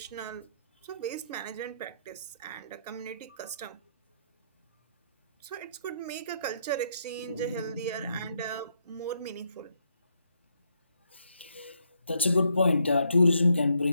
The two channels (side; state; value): both; inverted; correlation -0.76